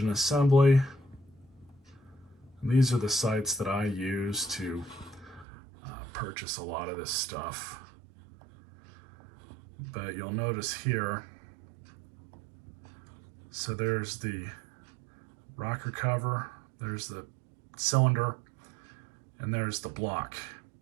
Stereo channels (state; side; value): drops out; left; at 5.5 s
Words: assembly. And these are the sites that I use to purchase a lot of this stuff. But you'll notice here, so there's the rocker cover, there's the cylinder, and there's the block.